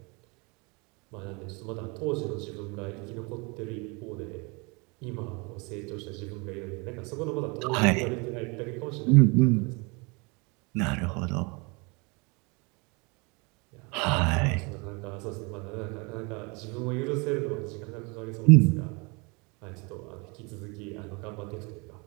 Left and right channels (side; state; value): left; quieter; 29.7 dB